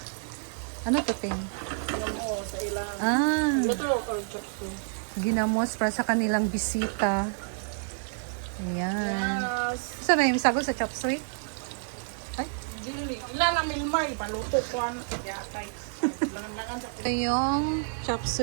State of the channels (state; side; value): silent; left; 59 dB below the other